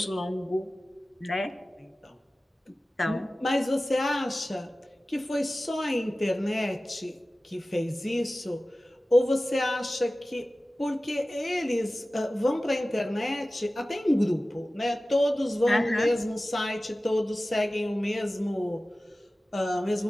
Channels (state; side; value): normal; both; correlation 0.96